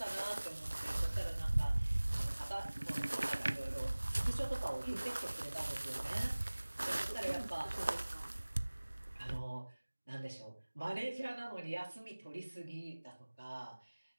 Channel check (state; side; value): inverted; both; correlation -1.00